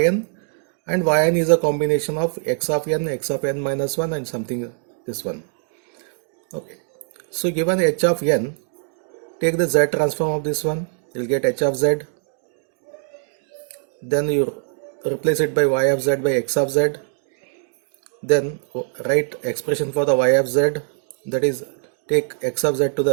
and yn is a combination of x of n minus 1 and something this one. Okay. So given h of n, take the z transform of this one, you will get h of z. Then you replace it by y of z by x of z. Then write expression for the y of z, that is take x of z to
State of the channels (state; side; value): silent; left; 64 dB below the other